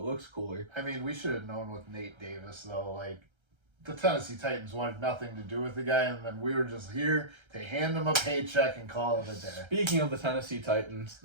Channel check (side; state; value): left; late; 1.3 ms